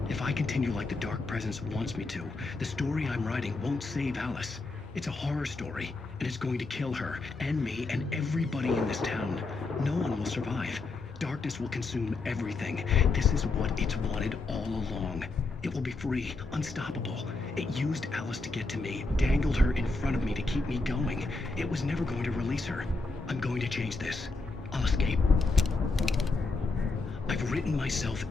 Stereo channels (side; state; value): right; quieter; 3.6 dB